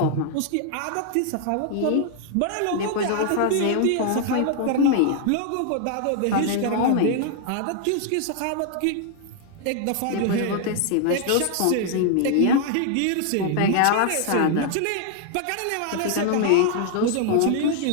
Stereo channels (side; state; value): both; different; correlation 0.00